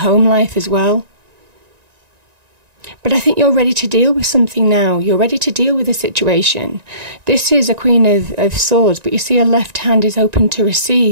life as well. But I think you're ready to deal with something now. You're ready to deal with a situation. This is a Queen of Swords, but you see her left hand is open to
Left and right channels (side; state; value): left; late; 1.9 ms